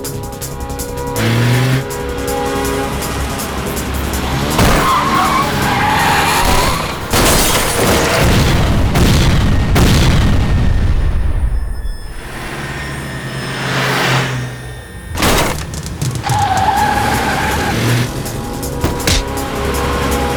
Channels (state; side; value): identical; both; correlation 1.00